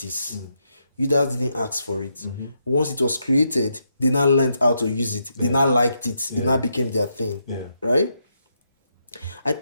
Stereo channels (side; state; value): both; inverted; correlation -0.81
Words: Users didn't ask for it. Once it was created, they now learned how to use it. They now liked it. It now became their thing. Yeah. Right? I